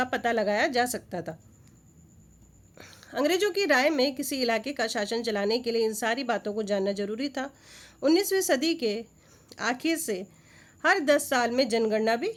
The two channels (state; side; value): identical; both; correlation 1.00